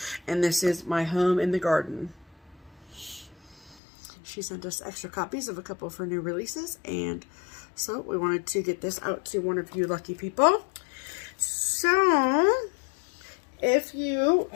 And this is My Home in the Garden. She sent us extra copies of a couple of her new releases. And so we wanted to get this out to one of you lucky people. So, if you,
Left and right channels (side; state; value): right; drops out; at 3.8 s